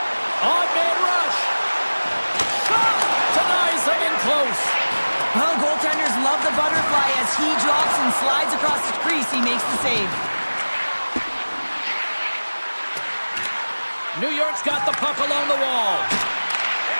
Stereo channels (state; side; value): inverted; both; correlation -1.00